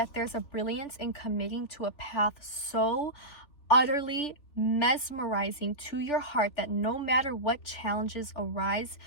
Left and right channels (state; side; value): late; right; 3.4 ms